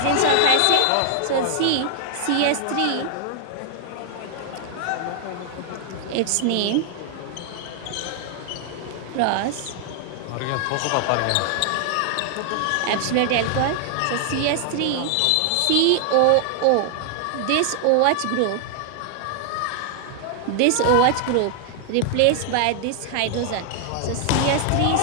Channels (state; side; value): different; both; correlation 0.00